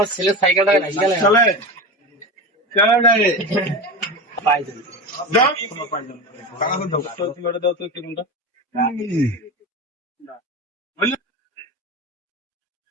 ছেলে সাইকেলটা রাখি গেলে চলে চলে যায় পাই যাবে দাও টাকা দাও তো কিলোটা দাও তো কিলোটা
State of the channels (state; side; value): normal; both; correlation 0.24